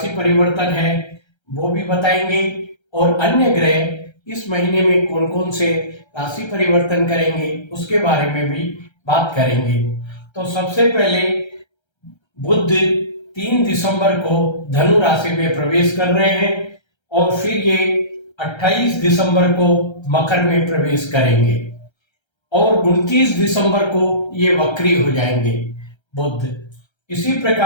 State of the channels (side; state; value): right; late; 1.3 ms